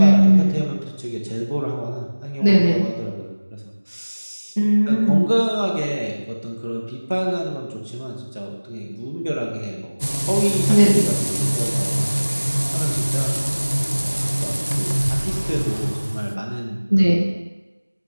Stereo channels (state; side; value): inverted; both; correlation -1.00